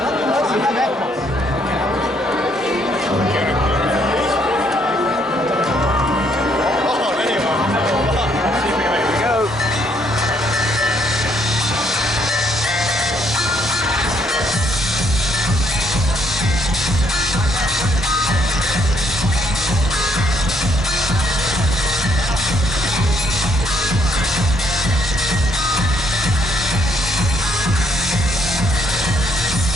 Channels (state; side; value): normal; both; correlation 0.69